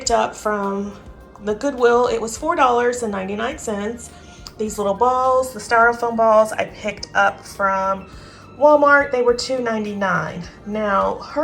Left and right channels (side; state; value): both; identical; correlation 1.00